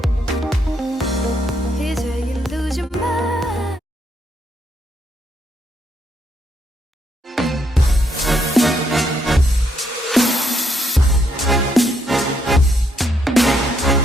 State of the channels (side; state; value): both; normal; correlation 0.74